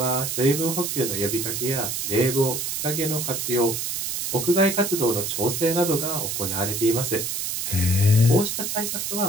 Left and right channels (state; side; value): noise; right; hiss, 2 dB below the sound